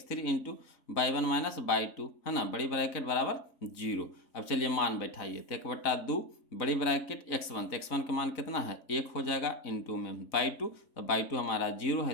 into by one minus by two, है ना, बड़ी ब्रैकेट बराबर 0। अब चलिए मान बैठाइए, तो 1/2 बड़ी ब्रैकेट x1, तो x1 का मान कितना है 1 हो जाएगा, इंटू में बाई टू, तो बाई टू हमारा 0 है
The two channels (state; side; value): late; right; 4.0 ms